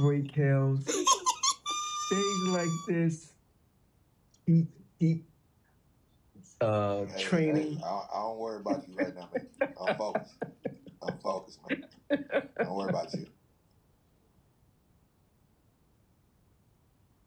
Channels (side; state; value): both; identical; correlation 1.00